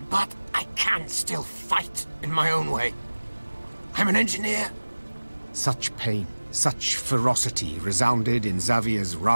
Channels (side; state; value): both; inverted; correlation -1.00